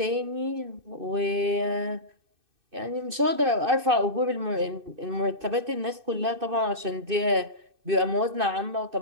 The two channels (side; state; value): left; late; 2.6 ms